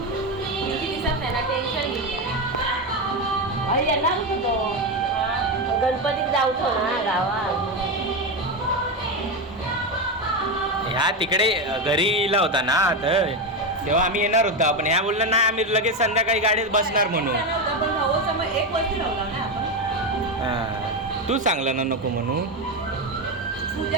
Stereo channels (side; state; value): both; normal; correlation 0.13